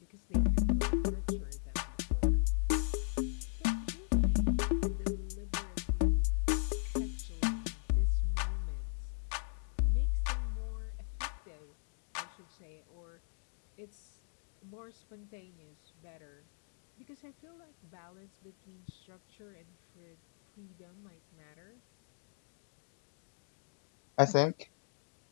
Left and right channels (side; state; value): right; silent; digital silence